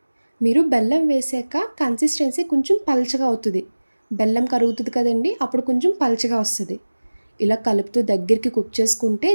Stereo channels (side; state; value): both; inverted; correlation -1.00